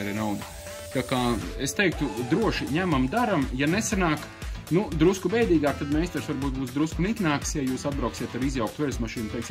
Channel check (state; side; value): identical; both; correlation 1.00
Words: nauda. Tā kā es teiktu, droši ņemam, daram, ja nesanāk, drusku bēdīgāk, tad meistars varbūt būs drusku niknāks, ja jūs atbrauksiet ar izjauktu veļas mašīnu,